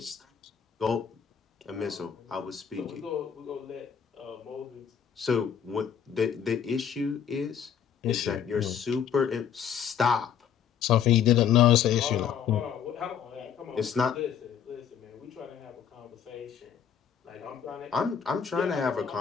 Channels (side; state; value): right; quieter; 8.2 dB